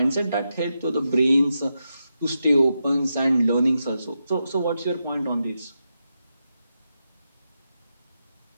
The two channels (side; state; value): both; inverted; correlation -0.87